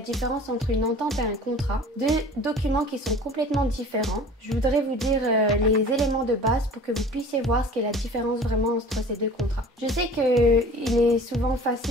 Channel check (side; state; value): both; normal; correlation 0.44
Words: entre une entente et un contrat. Deux documents qui sont complètement différents. Je voudrais vous dire les éléments de base pour que vous puissiez voir ce qu'est la différence vraiment entre ces deux contrats. Je sais qu'il est souvent